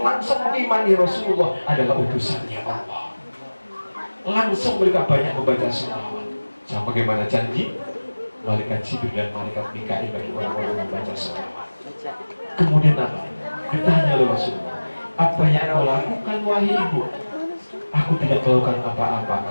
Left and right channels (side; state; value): both; inverted; correlation -1.00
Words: mengimani Rasulullah adalah utusannya Allah. Langsung mereka banyak membaca sholawat. Sama bagaimana janji malaikat Jibril dan malaikat Mikail bagi orang-orang yang membaca sholawat. Kemudian apa? Ditanya oleh Rasulullah, apa yang kau lakukan wahai ibu? Aku tidak melakukan apa-apa,